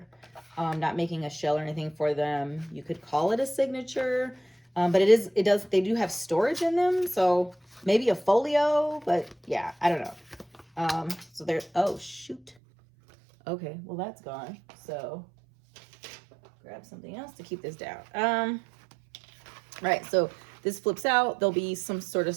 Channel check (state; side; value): drops out; left; at 12.6 s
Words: Not making a shell or anything for them. You could call it a signature, but they do have storage in them. So maybe a folio, but yeah, I don't know. So there's, oh shoot. Okay, well that's gone. So grab something else to keep this down. Right, so this flips out. There'll be some sort of